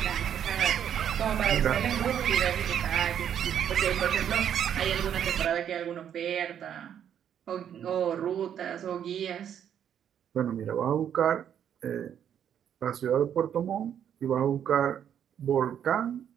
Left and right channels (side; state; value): left; quieter; 9.2 dB